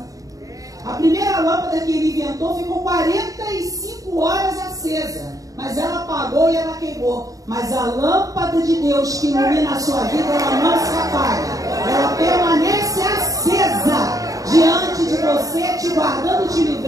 A primeira lâmpada que ele inventou ficou 45 horas acesa, mas ela apagou e ela queimou. Mas a lâmpada de Deus que ilumina a sua vida, ela não se apaga. Ela permanece acesa diante de você, te guardando, te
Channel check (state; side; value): late; left; 0.17 ms